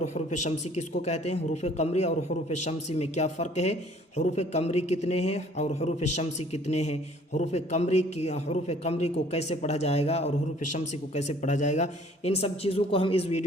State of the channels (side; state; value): both; normal; correlation 0.56